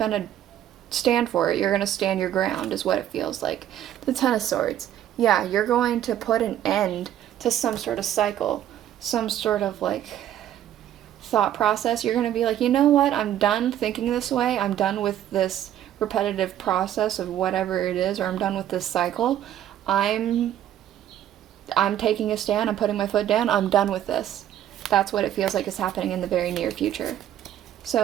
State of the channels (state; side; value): quieter; left; 11.4 dB